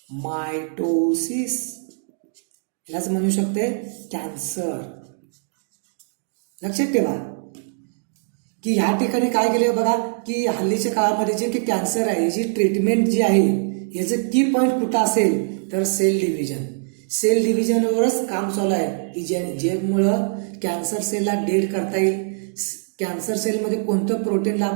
मायटोसिस, यालाच म्हणू शकते कॅन्सर. लक्षात ठेवा की ह्या ठिकाणी काय केले बघा की हल्लीच्या काळामध्ये जे की कॅन्सर आहे याची ट्रीटमेंट जी आहे याचं की पॉईंट कुठं असेल तर सेल डिव्हिजन. सेल डिव्हिजनवरच काम चालू आहे की ज्यामुळं कॅन्सर सेलला डेड करता येईल. कॅन्सर सेलमध्ये कोणतं प्रोटीनला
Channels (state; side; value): silent; left; digital silence